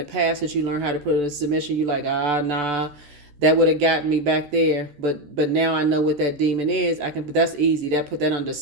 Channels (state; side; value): late; left; 14 ms